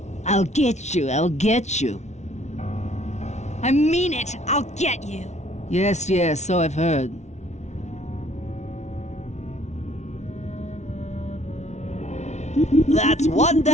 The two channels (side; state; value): right; late; 0.32 ms